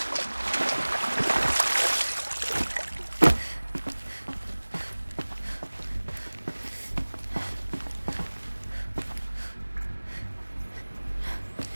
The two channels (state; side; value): inverted; both; correlation -1.00